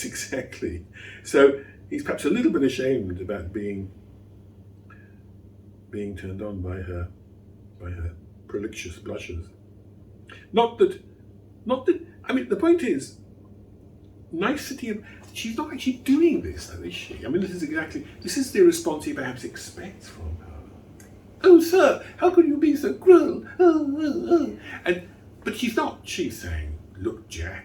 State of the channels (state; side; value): identical; both; correlation 1.00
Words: exactly. So he's perhaps a little bit ashamed about being turned on by her prolixious blushes. Not that. I mean, the point is, nicety of. She's not actually doing this, though, is she? I mean, this is the response he perhaps expects from her. Oh, sir, how could you be so cruel? But she's not. She's saying, look,